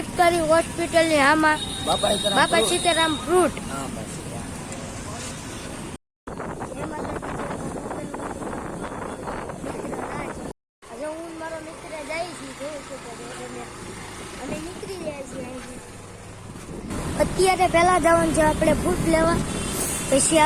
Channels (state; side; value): identical; both; correlation 1.00